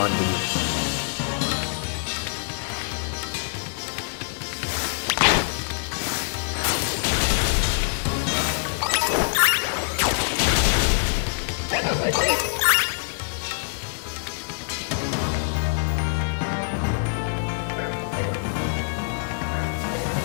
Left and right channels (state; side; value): silent; right; digital silence